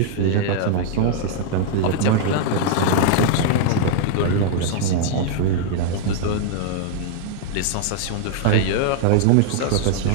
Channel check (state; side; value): different; both; correlation 0.00